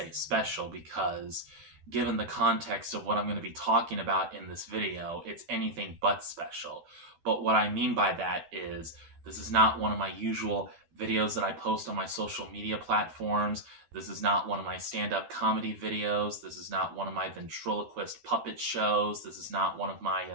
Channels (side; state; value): left; late; 13 ms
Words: special because given the context of what I'm going to be talking about in this video, it's anything but special. But what I mean by that is this is not one of my usual videos that I post on my social media platforms. This is not one of my stand-up comedy videos. This is not one of my ventriloquist puppet shows. This is not one of